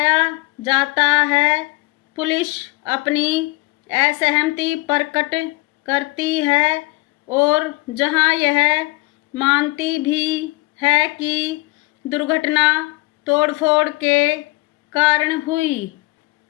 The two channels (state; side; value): quieter; right; 22.4 dB